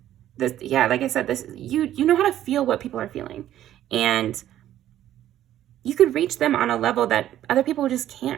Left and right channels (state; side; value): quieter; left; 12.3 dB